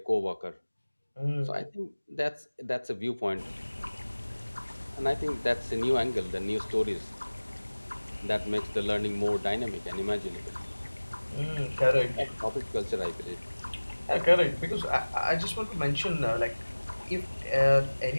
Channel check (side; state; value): both; inverted; correlation -1.00